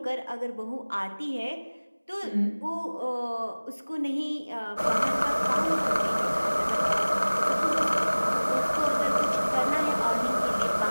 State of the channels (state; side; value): inverted; both; correlation -1.00